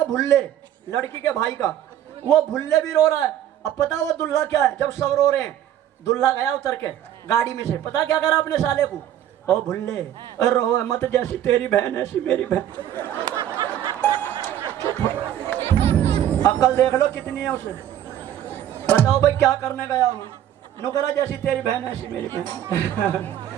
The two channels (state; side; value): quieter; left; 11.2 dB